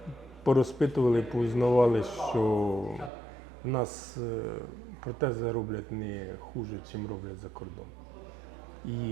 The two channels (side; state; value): left; drops out; at 3.1 s